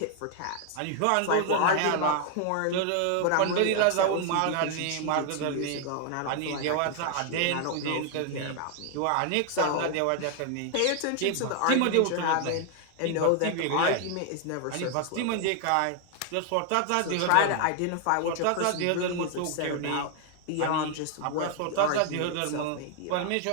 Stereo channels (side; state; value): both; different; correlation 0.00